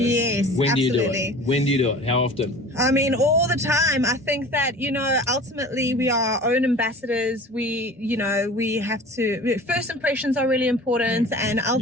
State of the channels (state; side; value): normal; both; correlation 0.41